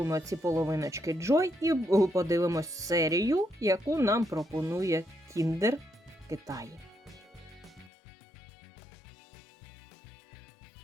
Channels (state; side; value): drops out; right; at 7.9 s